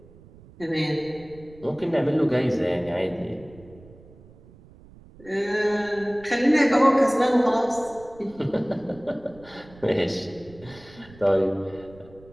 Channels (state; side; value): noise; right; rumble, 23 dB below the sound